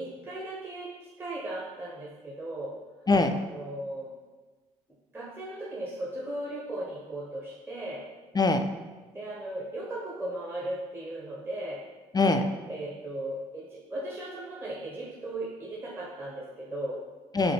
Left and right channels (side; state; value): both; normal; correlation 0.66